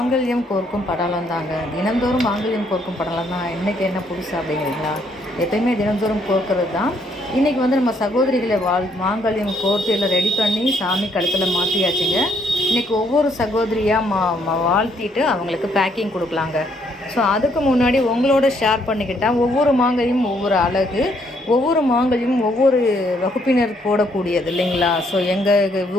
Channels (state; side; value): normal; both; correlation 0.70